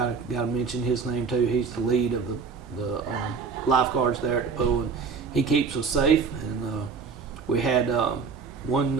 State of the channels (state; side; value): quieter; left; 5.4 dB